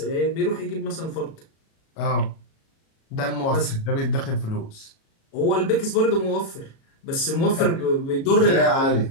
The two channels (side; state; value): right; late; 37 ms